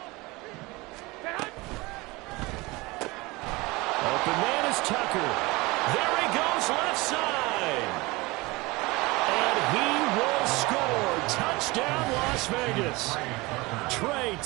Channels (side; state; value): left; quieter; 23.0 dB